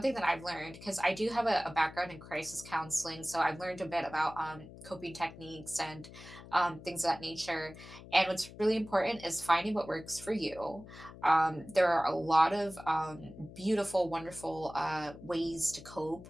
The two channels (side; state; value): left; noise; hum, 16 dB below the sound